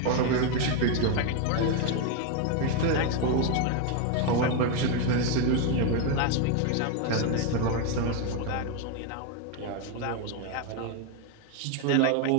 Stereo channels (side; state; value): both; different; correlation 0.01